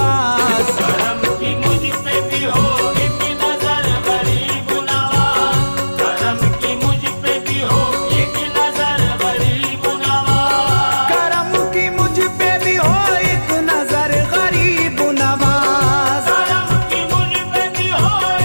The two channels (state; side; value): inverted; both; correlation -1.00